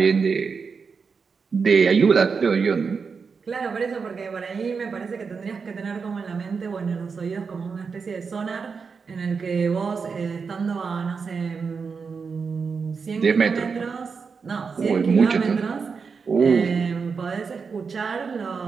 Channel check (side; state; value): left; quieter; 5.4 dB